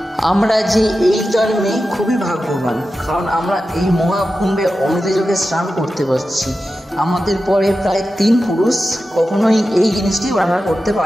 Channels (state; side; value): normal; both; correlation 0.92